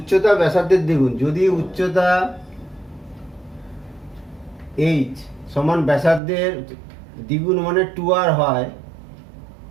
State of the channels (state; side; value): drops out; left; at 6.2 s